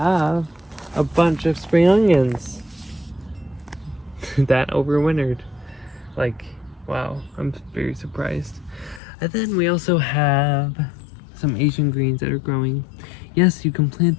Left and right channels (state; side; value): drops out; right; at 9.0 s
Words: a bunch of spring onions that overwintered. Like, wow, I'm very surprised. And then we also have some Asian greens that are growing. Yes, you can plant